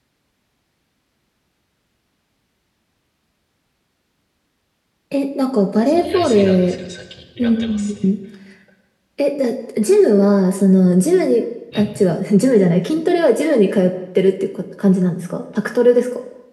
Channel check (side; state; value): both; identical; correlation 1.00